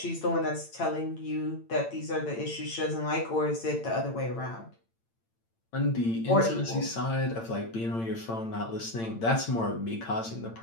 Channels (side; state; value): right; late; 8.8 ms